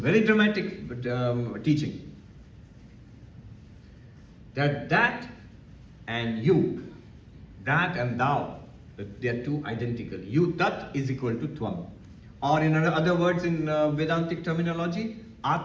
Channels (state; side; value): identical; both; correlation 1.00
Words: dramatic teaching. That and you, that and thou, they are two identical. You, Tat, is equal to Tvam. Or in other words, in Vedantic terminology,